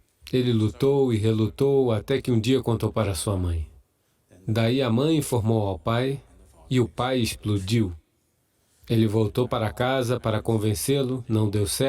Ele lutou e relutou até que um dia contou para sua mãe. Daí a mãe informou ao pai e o pai explodiu. Ele voltou para casa para convencê-lo, não deu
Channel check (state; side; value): identical; both; correlation 1.00